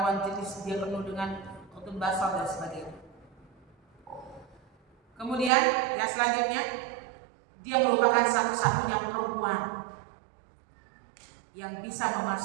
jenis dia penuh dengan khutun basar dan sebagainya. Kemudian yang selanjutnya dia merupakan satu-satunya perempuan yang bisa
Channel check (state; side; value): drops out; left; at 5.5 s